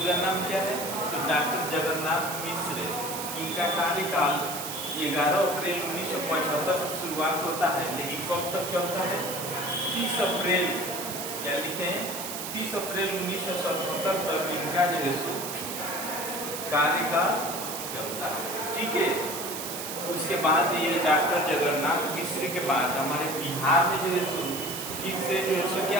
नाम क्या है? तो डॉक्टर जगन्नाथ मिश्र। इनका कार्यकाल 11 अप्रैल 1975 से शुरुआत होता है, लेकिन कब तक चलता है? 30 अप्रैल, क्या लिखे हैं? 30 अप्रैल 1977 तक इनका जो है सो कार्यकाल चलता है, ठीक है। उसके बाद ये डॉक्टर जगन्नाथ मिश्र के बाद हमारे बिहार में जो है सो फिर से जो है सो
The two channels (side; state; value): right; noise; hiss, 6 dB below the sound